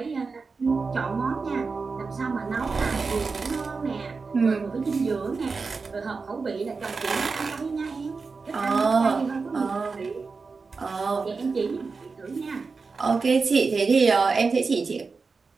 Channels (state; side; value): quieter; left; 4.5 dB